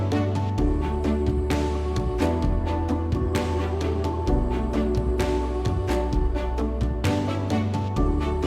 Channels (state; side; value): identical; both; correlation 1.00